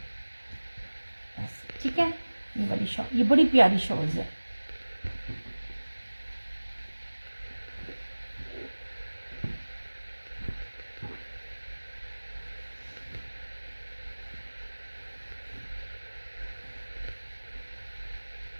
ऐसे ठीक है। ये वाली शॉल, ये बड़ी प्यारी शॉल्स है।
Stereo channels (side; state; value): both; inverted; correlation -1.00